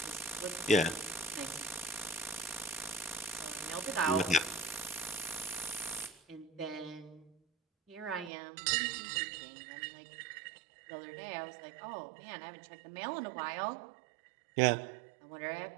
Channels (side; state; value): left; drops out; at 8.3 s